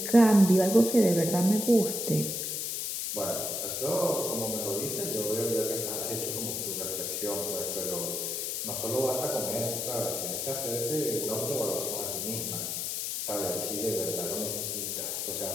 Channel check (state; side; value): noise; left; hiss, 2 dB below the sound